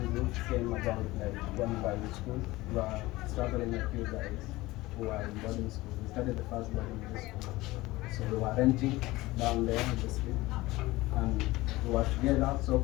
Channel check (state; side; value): quieter; right; 19.4 dB